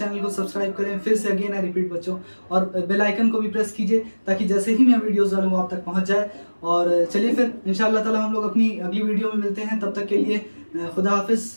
को सब्सक्राइब करें। फिर से अगेन आई रिपीट बच्चों, और बेल आइकन को भी प्रेस कीजिए, ताकि जैसे ही मैं वीडियोस डालूँ वो आप तक पहुंच जाए। और चलिए फिर इंशाअल्लाह ताला हम लोग अपनी अगली वीडियो में मिलते हैं। तब तक के लिए खुदा हाफिज़,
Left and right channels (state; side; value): inverted; both; correlation -1.00